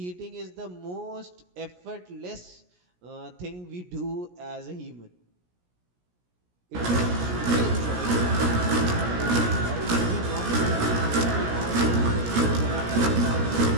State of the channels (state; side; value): late; left; 17 ms